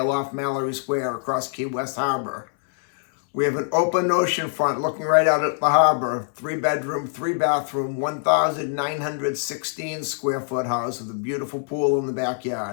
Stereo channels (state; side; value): silent; right; 63 dB below the other